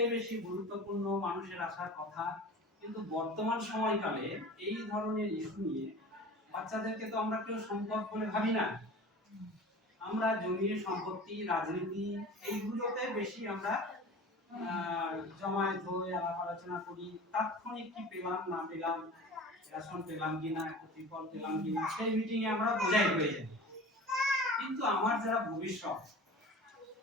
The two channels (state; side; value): normal; both; correlation 0.38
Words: বেশি গুরুত্বপূর্ণ, মানুষের আসার কথা, কিন্তু বর্তমান সময়কালে এই ধরনের ইস্যু নিয়ে বাচ্চাদেরকে তো আমরা কেউ সম্পদ বলে ভাবি না। আমরা জমি সম্পত্তি, রাজনীতি এইগুলোতে বেশি আমরা জমায়েত হয়ে আলাপ আলোচনা করি। তাৎক্ষণিক কি পেলাম না পেলাম, রেশন পেলাম কিনা, ত্রিপল পেলাম কিনা, সেই মিটিংয়ে আমরা বোঝাই হয়ে যাই। কিন্তু আমার যারা ভবিষ্যৎ,